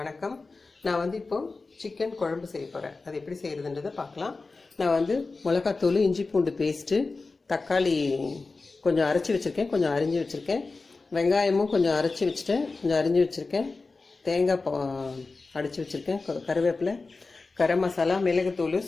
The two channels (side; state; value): right; quieter; 3.8 dB